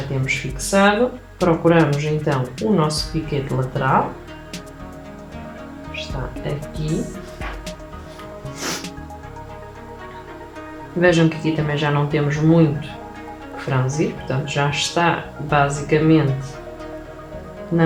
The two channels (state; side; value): identical; both; correlation 1.00